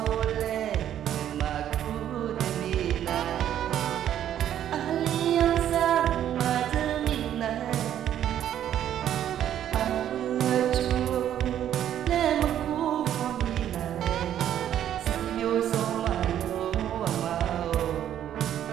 ole ma ku de mi na alianza ma de mi na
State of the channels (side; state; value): left; quieter; 10.8 dB